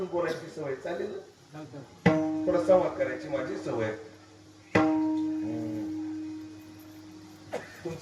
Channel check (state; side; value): identical; both; correlation 1.00